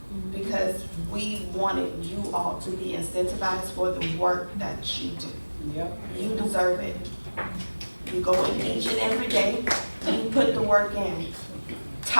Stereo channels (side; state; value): both; inverted; correlation -1.00